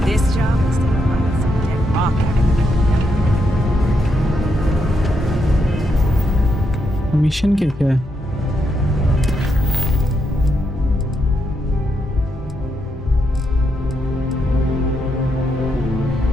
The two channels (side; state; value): both; normal; correlation 0.80